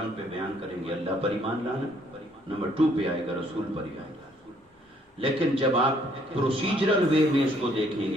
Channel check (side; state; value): both; normal; correlation 0.65